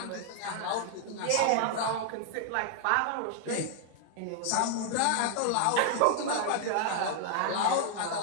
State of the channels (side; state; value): both; different; correlation 0.00